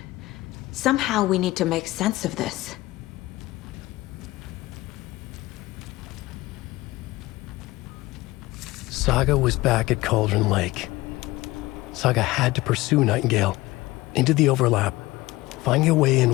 Somehow we need to make sense of this. Saga was back at Cauldron Lake. Saga had to pursue Nightingale into the overlap. Finding a way in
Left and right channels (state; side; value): quieter; right; 19.1 dB